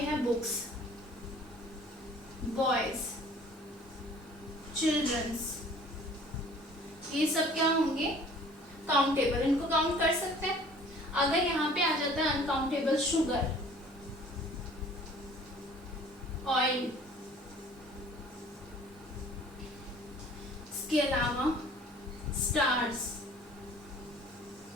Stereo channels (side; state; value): both; normal; correlation 0.51